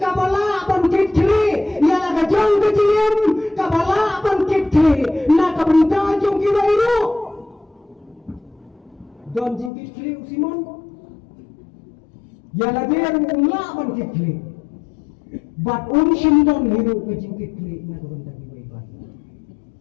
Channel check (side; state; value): right; drops out; at 9.7 s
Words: kabala bangkit kili yala kajong kajiem kabala bangkit kili na kabunta jong kiwairu don jingkit kili usiman yala dia umla bangkit kili bat umshimdon hiru kajingkit kili na kabunta kiwairu